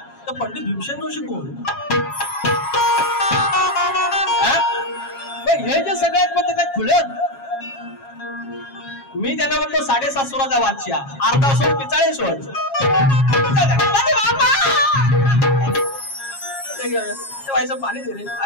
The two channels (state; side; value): late; right; 7.3 ms